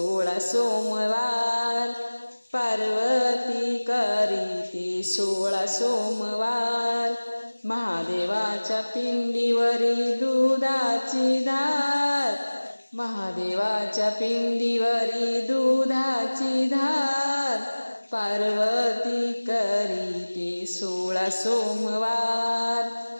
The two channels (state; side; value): inverted; both; correlation -1.00